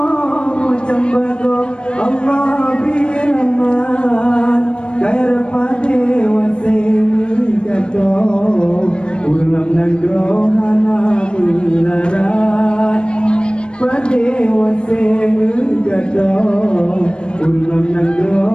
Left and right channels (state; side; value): late; right; 0.055 ms